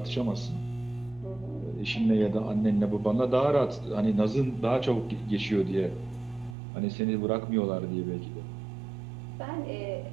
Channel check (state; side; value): drops out; left; at 6.6 s